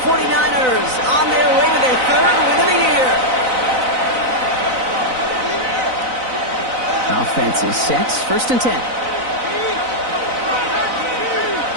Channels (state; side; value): late; left; 4.0 ms